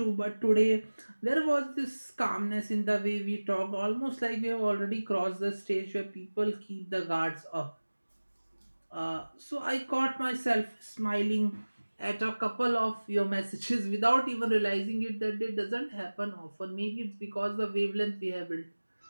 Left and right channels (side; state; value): both; inverted; correlation -1.00